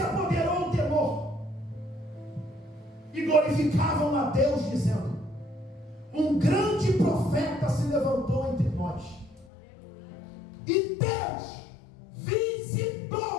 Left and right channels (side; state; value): right; drops out; at 9.5 s